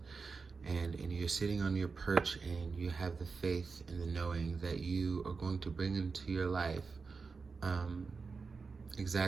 And you're sitting on your perch, and you have the faith and the knowing that you are going to bring into your life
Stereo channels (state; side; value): quieter; left; 4.7 dB